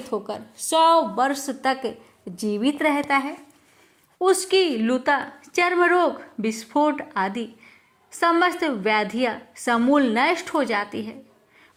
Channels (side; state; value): both; identical; correlation 1.00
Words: होकर 100 वर्ष तक जीवित रहता है। उसकी लुता, चर्म रोग, विस्फोट आदि समस्त व्याधियां समूल नष्ट हो जाती है।